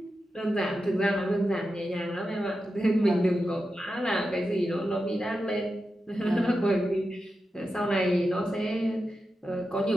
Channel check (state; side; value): normal; both; correlation 0.90